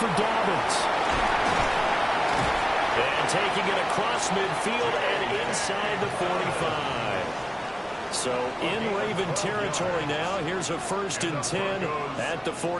Dobbins. And taking it across midfield and inside the 45. So in Raven territory now. Here's a first and 10 at the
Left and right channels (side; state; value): both; identical; correlation 1.00